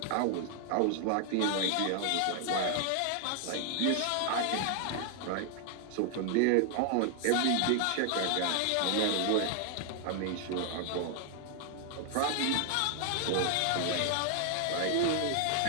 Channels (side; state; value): both; different; correlation 0.00